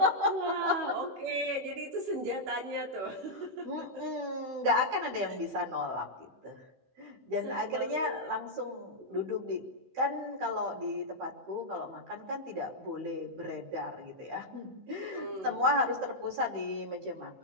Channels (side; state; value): left; late; 15 ms